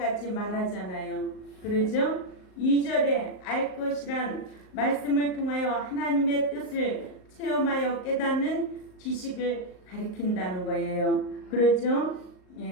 말하잖아요. 그러죠? 2절에 알 것이란 말씀을 통하여 하나님의 뜻을 체험하여 깨닫는 지식을 가리킨다는 거예요. 그렇죠?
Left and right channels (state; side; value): late; right; 38 ms